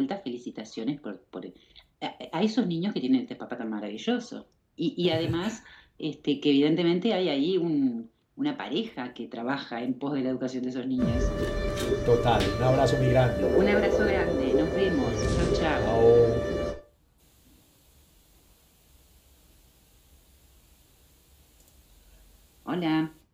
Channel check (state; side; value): identical; both; correlation 1.00